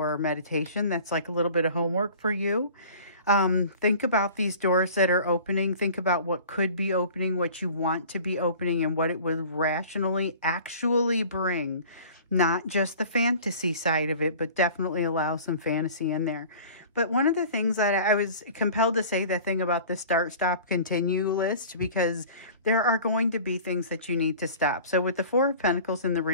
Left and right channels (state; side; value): inverted; both; correlation -0.43